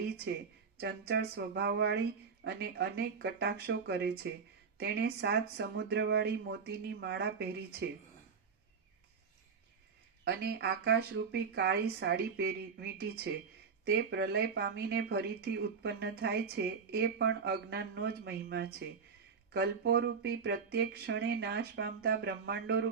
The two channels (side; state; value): left; quieter; 5.8 dB